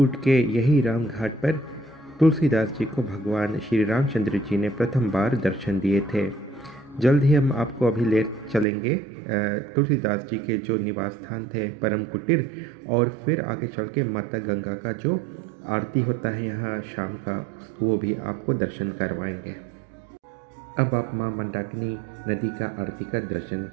के यही राम घाट पर तुलसीदास जी को भगवान श्री रामचंद्र जी ने प्रथम बार दर्शन दिए थे। जल्द ही हम आपको अभी ले चलेंगे तुलसीदास जी के जो निवास स्थान थे परम कुटीर, और फिर आगे चल के माता गंगा का जो आरती होता है यहाँ शाम का, वो भी आपको दर्शन करवाएंगे। अब आप माँ मंदाकिनी नदी का आरती का दर्शन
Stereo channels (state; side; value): drops out; left; at 8.7 s